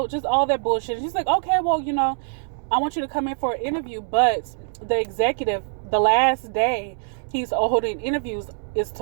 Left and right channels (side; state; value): left; silent; digital silence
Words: just all that bullshit. She's like, okay, well, I want you to come in for an interview, but the executive, the last day he's holding interviews is